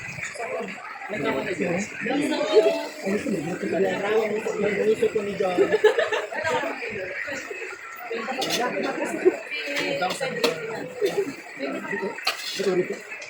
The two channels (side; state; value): both; identical; correlation 1.00